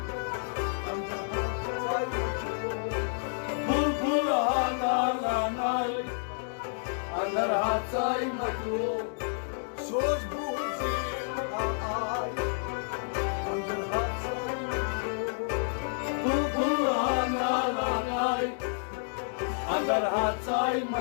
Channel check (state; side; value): silent; right; digital silence